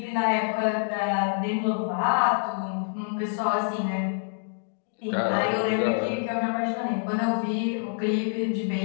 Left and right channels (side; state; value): right; silent; digital silence